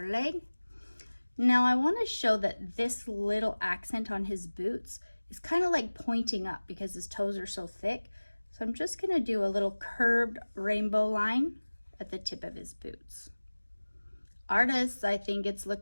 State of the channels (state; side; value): inverted; both; correlation -1.00